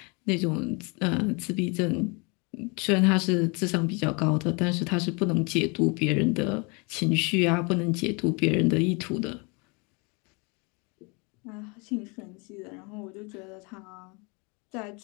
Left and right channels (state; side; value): quieter; right; 30.8 dB